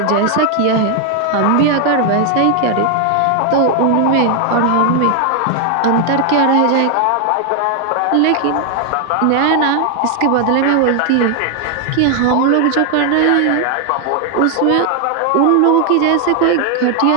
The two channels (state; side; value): different; both; correlation 0.00